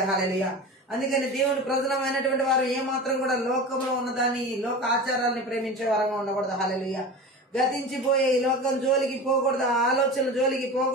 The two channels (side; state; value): both; normal; correlation 0.31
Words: హల్లెలూయా. అందుకని దేవుని ప్రజలమైనటువంటి వారు ఏమాత్రం కూడా లోకంలో ఉన్నదాన్ని, లోక ఆచారాలని ప్రేమించే వారంగా ఉండకూడదు. హల్లెలూయా. గతించిపోయే ఈ లోకం జోలికి పోకూడదు, ఆలోచనల జోలికి